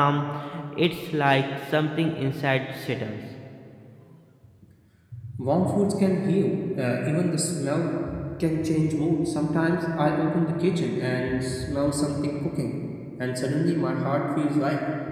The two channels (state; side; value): identical; both; correlation 1.00